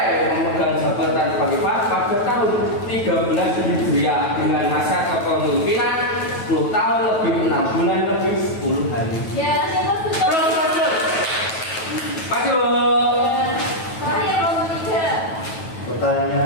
memegang jabatan khalifah pada tahun 13 Hijriah dengan masa kepemimpinan 10 tahun lebih 6 bulan lebih 10 hari. Ya, siapa betul? Maju. Saya nomor 3.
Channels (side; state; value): right; late; 9.2 ms